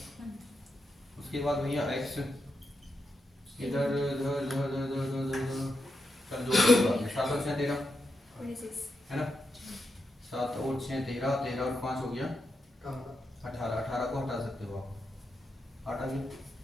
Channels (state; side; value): normal; both; correlation 0.85